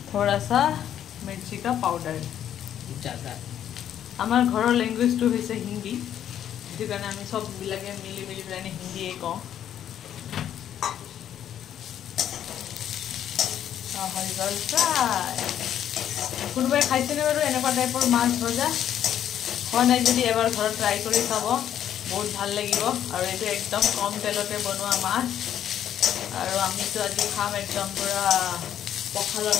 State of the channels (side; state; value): right; quieter; 10.3 dB